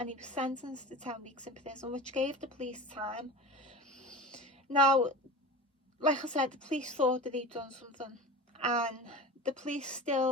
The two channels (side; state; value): both; normal; correlation 0.32